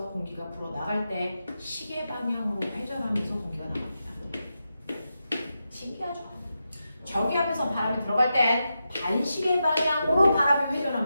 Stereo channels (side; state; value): both; inverted; correlation -0.88